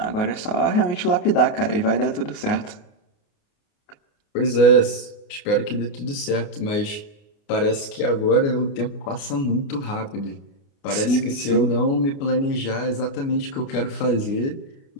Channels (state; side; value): late; right; 29 ms